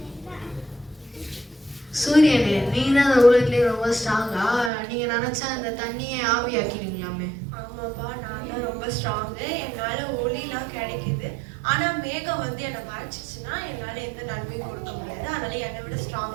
சூரியனே, நீங்க தான் அந்த உலகத்திலே ரொம்ப ஸ்ட்ராங்கா? நீங்க நினைச்சா அந்த தண்ணியை ஆவியாக்கிடுவீங்களாமே. ஆமாப்பா, நான் தான் ரொம்ப ஸ்ட்ராங்கு. என்னால ஒளிலாம் கிடைக்குது. ஆனா மேகம் வந்து என்னை மறைச்சிச்சுன்னா என்னால எந்த நன்மையும் கொடுக்க முடியாது. அதனால என்னை விட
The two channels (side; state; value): left; drops out; at 4.7 s